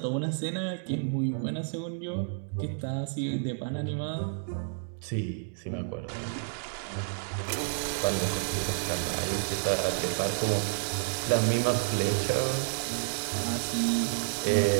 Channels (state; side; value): silent; left; digital silence